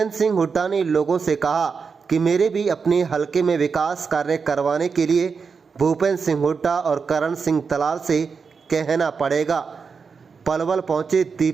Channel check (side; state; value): left; quieter; 5.4 dB